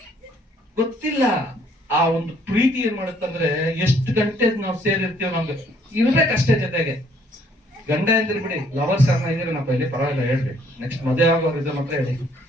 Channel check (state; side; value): normal; both; correlation 0.64